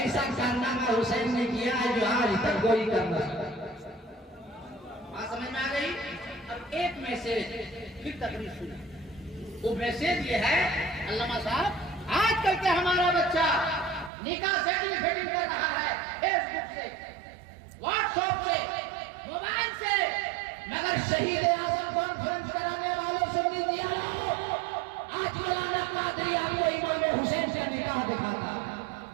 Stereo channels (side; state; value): left; drops out; at 14.1 s